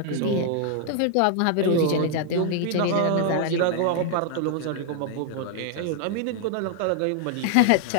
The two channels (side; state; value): both; different; correlation 0.00